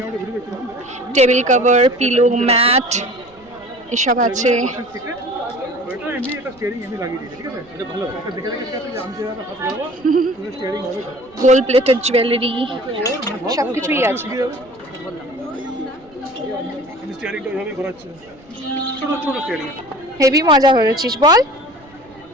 টেবিল কভার, পিলো, ম্যাট, এসব আছে। ওইটা এমনি একটা স্টিয়ারিং এমনি লাগিয়ে দিয়েছে, ঠিক আছে? এটা ভালো। এটা দেখে দেখে ঠিক আছে, আমি যেভাবে হাত লাগাবো, তুমি স্টিয়ারিং হবে। গোল্ড প্লেটেড জুয়েলারি, সব কিছুই আছে। আমি স্টিয়ারিংটা ওইভাবেই ঘোরাচ্ছি। ছোট ছোট স্টিয়ারিং। হেভি মজা করেছিস বল।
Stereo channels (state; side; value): noise; right; rumble, 28 dB below the sound